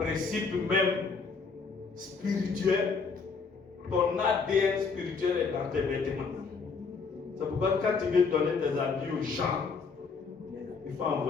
même spirituel, ton ADN spirituel est dans tes vêtements. C'est pourquoi quand tu veux donner tes habits aux gens, il faut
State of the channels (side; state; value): right; quieter; 4.9 dB